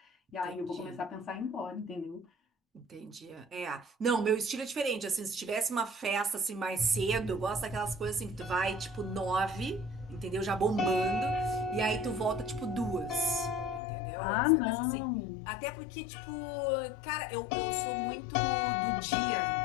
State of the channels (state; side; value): drops out; right; at 13.8 s